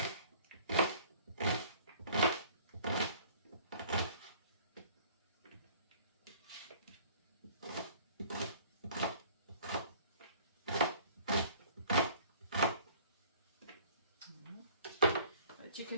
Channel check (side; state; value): both; inverted; correlation -0.52